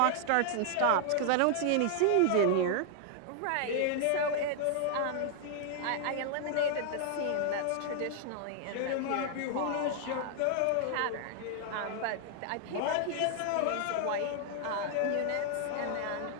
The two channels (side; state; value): both; different; correlation 0.00